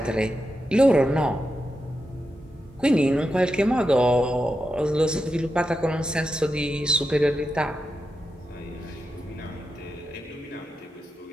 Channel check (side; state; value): both; normal; correlation 0.88